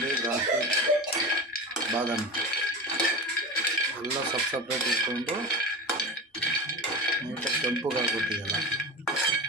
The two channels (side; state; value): both; normal; correlation 0.28